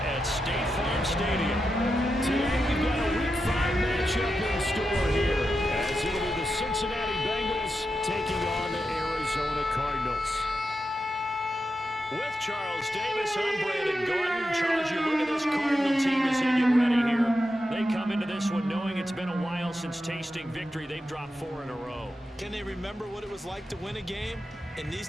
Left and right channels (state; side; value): normal; both; correlation 0.88